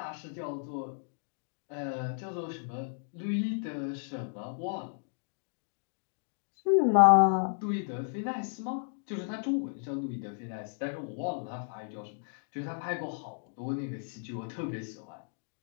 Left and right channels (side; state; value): right; silent; digital silence